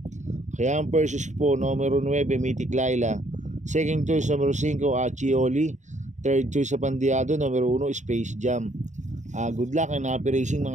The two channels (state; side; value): late; left; 0.35 ms